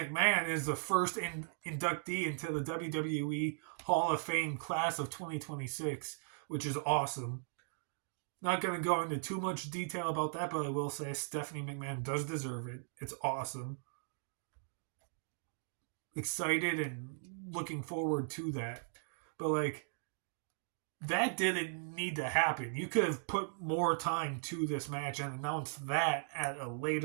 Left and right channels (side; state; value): left; silent; digital silence